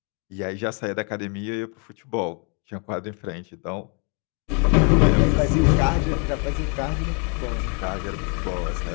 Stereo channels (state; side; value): quieter; right; 36.6 dB